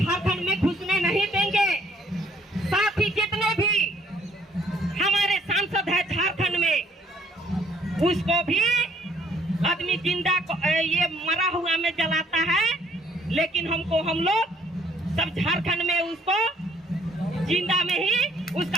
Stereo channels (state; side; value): normal; both; correlation 0.63